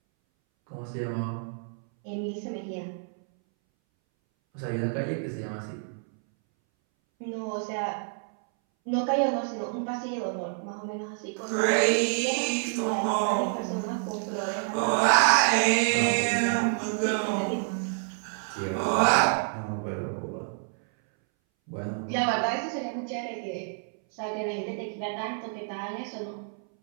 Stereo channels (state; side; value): silent; left; 59 dB below the other